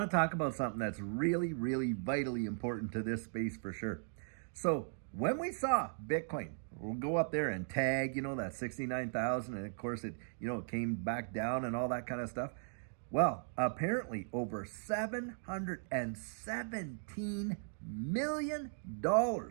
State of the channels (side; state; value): left; silent; digital silence